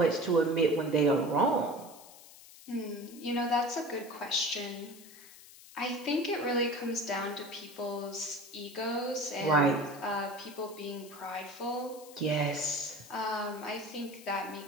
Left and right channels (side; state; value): left; noise; hiss, 19 dB below the sound